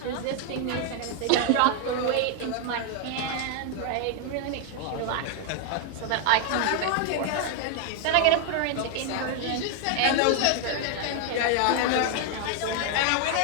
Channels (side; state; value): both; different; correlation 0.01